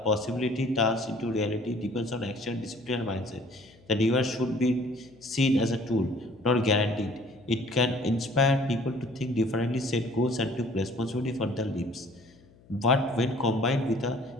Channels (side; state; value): left; noise; hum, 27 dB below the sound